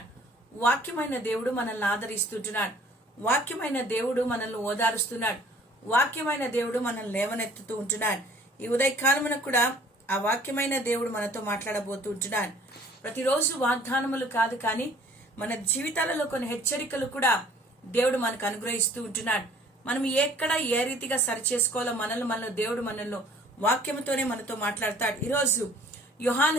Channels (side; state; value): both; normal; correlation 0.54